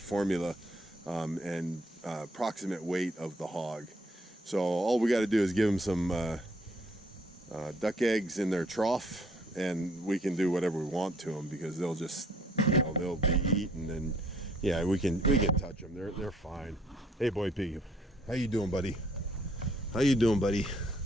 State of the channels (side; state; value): both; normal; correlation 0.63